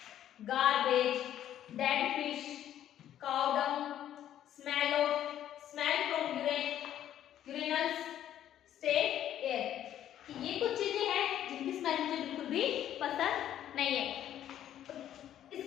garbage, dead fish, cow dung, smell from urinals, state air. ये कुछ चीजें हैं जिनकी स्मेल मुझे बिल्कुल भी पसंद नहीं है।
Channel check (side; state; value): right; quieter; 11.2 dB